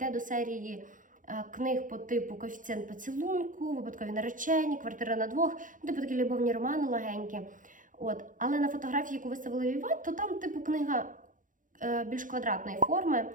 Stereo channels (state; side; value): late; left; 0.38 ms